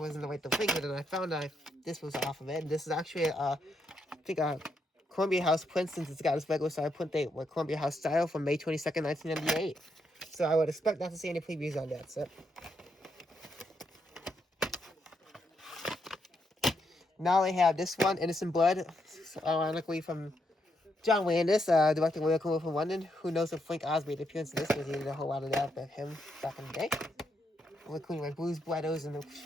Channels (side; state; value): both; normal; correlation 0.79